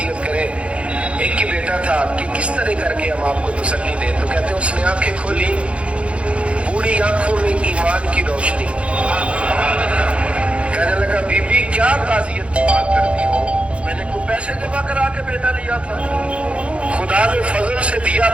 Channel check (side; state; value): left; late; 0.061 ms